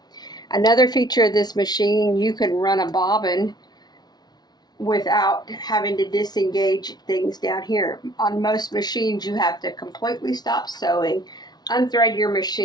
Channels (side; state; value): right; late; 0.19 ms